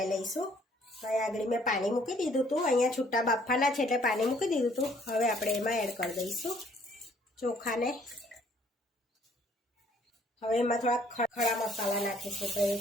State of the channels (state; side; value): normal; both; correlation 0.62